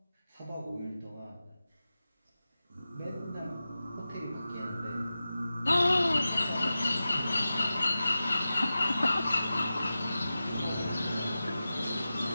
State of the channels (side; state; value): both; inverted; correlation -0.94